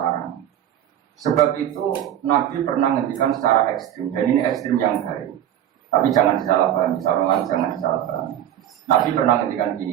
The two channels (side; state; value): left; quieter; 11.1 dB